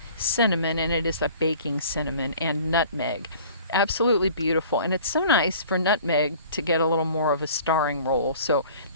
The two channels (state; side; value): inverted; both; correlation -0.48